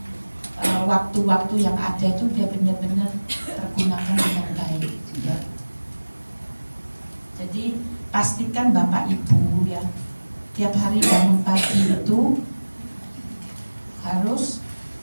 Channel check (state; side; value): inverted; both; correlation -1.00